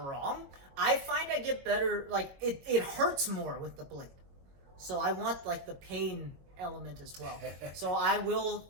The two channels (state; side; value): late; left; 22 ms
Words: wrong. I find I get better, like, it hurts more with the blade. So I want, like, the pain element as well. So I will